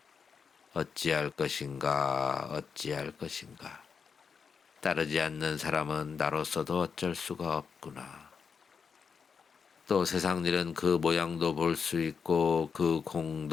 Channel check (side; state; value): right; quieter; 6.0 dB